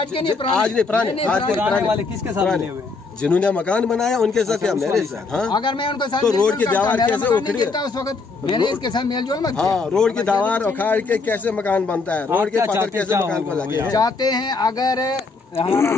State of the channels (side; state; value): right; quieter; 4.1 dB